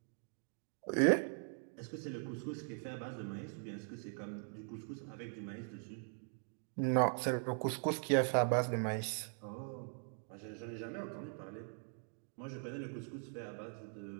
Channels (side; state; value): left; silent; 50 dB below the other